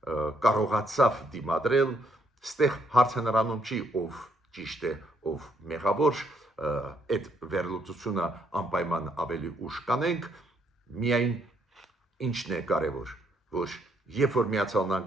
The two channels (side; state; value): both; normal; correlation 0.72